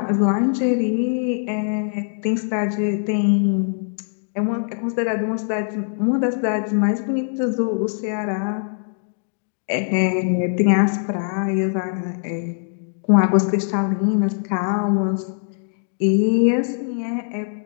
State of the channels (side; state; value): right; silent; digital silence